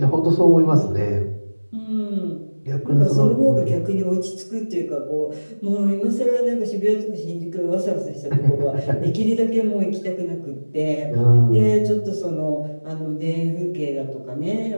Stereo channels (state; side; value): inverted; both; correlation -1.00